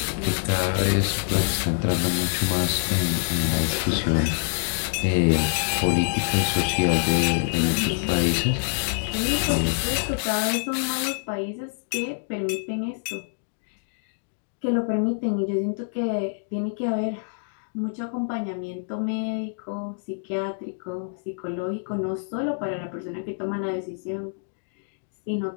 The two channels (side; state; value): right; silent; digital silence